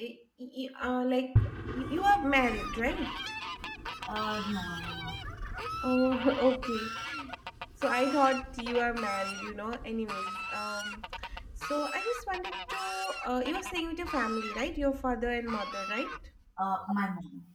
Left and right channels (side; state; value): both; identical; correlation 1.00